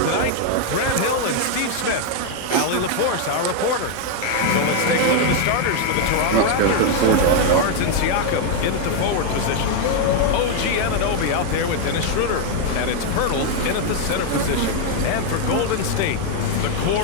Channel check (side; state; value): both; different; correlation 0.01